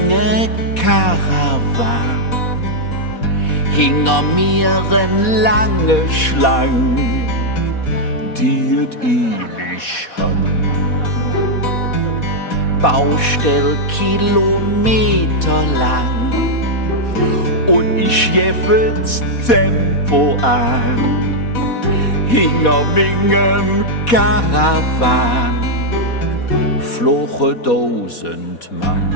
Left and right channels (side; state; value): right; late; 4.1 ms